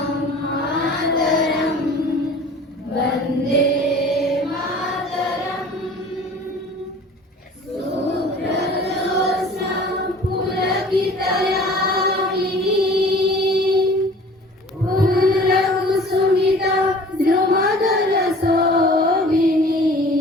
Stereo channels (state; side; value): normal; both; correlation 0.46